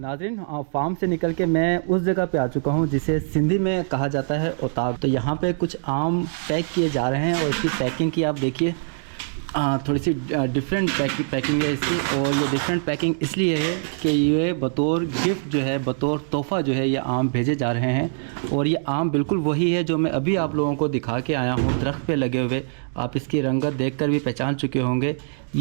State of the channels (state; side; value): silent; left; digital silence